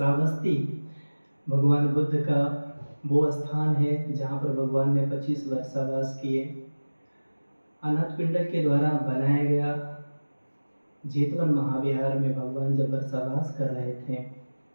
भगवान बुद्ध का वो स्थान है जहाँ पर भगवान ने 25 वर्षावास किए। अनाथ पिंडर के द्वारा बनाया गया जेतवन महाविहार में भगवान जब वर्षावास कर रहे थे,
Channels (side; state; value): both; inverted; correlation -1.00